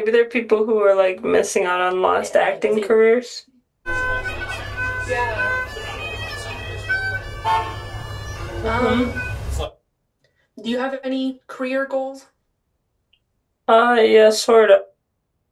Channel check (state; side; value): identical; both; correlation 1.00